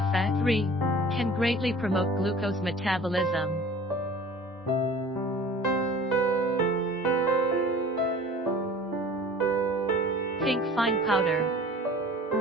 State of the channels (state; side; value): normal; both; correlation 0.44